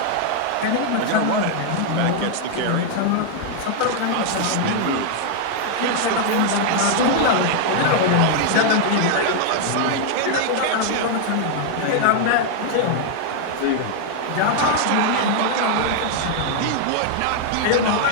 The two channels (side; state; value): both; different; correlation 0.00